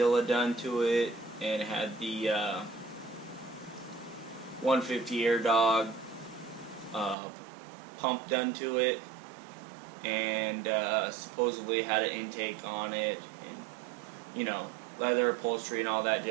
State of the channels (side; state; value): left; drops out; at 7.2 s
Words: done to it, and it had the 150 Air Dog pump done to it, and supposedly had an intake on it, and you know, leather upholstery and all that